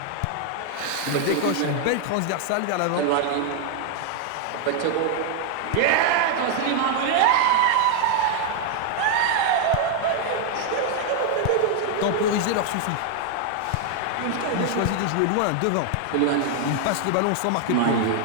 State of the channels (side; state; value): both; different; correlation 0.00